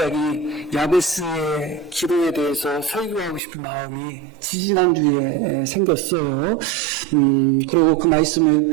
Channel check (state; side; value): drops out; left; at 3.4 s